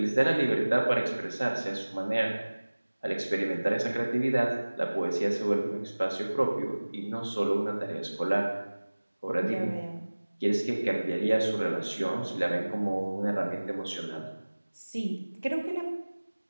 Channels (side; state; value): both; inverted; correlation -1.00